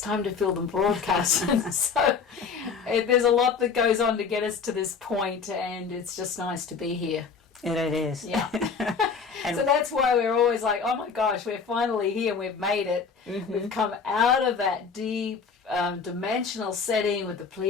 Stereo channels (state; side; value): quieter; right; 5.6 dB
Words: to film the broadcast. So there's a lot that goes on to get us to this point, and it's just nice to be here. And it is. Yeah. So that's why we're always like, oh my gosh, we're finally here, we've made it. Mm-hmm. We've come out of that deep dimensional setting with the